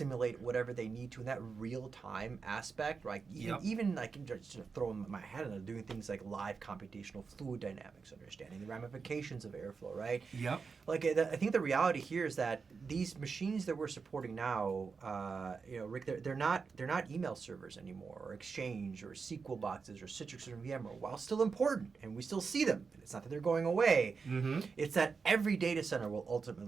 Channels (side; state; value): left; quieter; 5.2 dB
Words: whatever they need to in that real-time aspect, right? Even like just throw my head in, doing things like live computational fluid dynamics, understanding the ramifications of airflow, right? Yep. Like I think the reality here is that these machines that we're supporting now, Rick, they're not email servers anymore, or Exchange, or SQL boxes, or Citrix or VMware. While still important, and we still see them, and it's not that they're going away. Mm-hmm. It's that every data center will